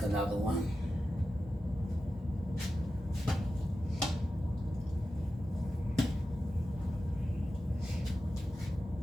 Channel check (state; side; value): normal; both; correlation 0.92